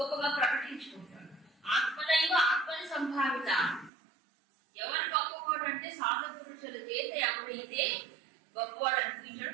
ప్రకటించుకుంటాడు. ఆత్మదైవ ఆత్మని సంభావిత. ఎవరు గొప్పవాడు అంటే సాధు పురుషుల చేత ఎవరైతే గొప్పవాడు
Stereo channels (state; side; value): drops out; left; at 3.9 s